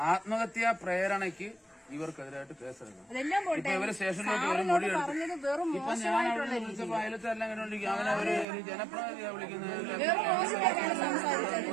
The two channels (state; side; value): drops out; left; at 8.5 s